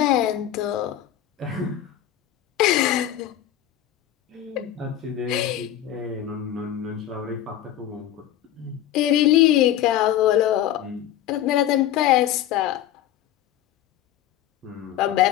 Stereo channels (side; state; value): right; quieter; 11.9 dB